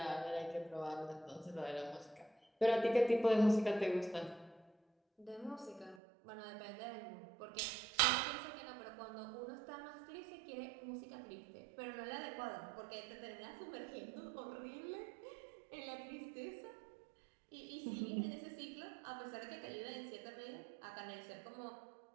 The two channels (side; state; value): left; drops out; at 6.0 s